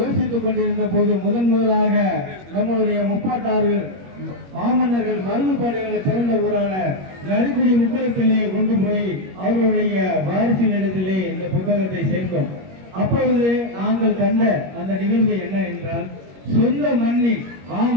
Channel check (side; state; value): left; late; 21 ms